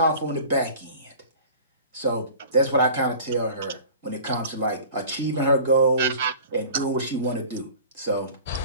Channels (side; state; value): both; inverted; correlation -0.42